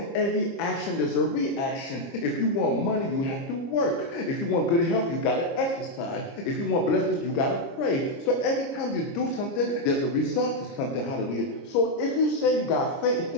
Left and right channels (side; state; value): right; late; 29 ms